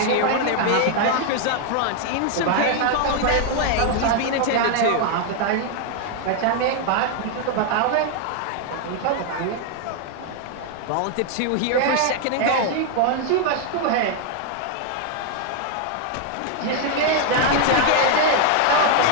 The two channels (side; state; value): both; different; correlation 0.00